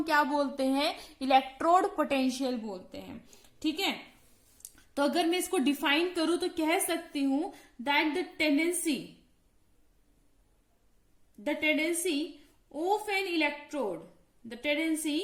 क्या बोलते हैं, इलेक्ट्रोड पोटेंशियल बोलते हैं। ठीक है, तो अगर मैं इसको डिफाइन करूं तो कह सकती हूं that the tendency of N electrode, the tendency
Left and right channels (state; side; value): identical; both; correlation 1.00